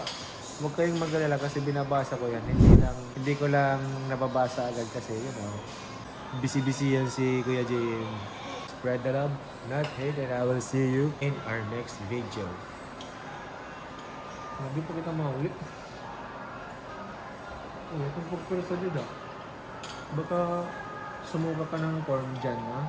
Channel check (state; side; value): identical; both; correlation 1.00